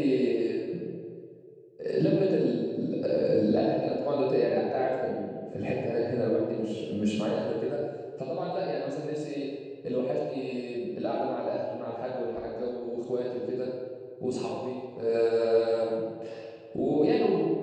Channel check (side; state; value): both; identical; correlation 1.00